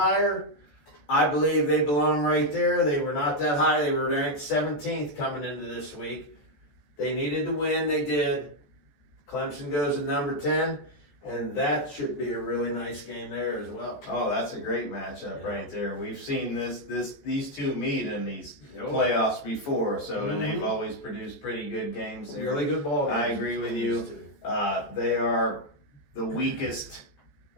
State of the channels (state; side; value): late; right; 14 ms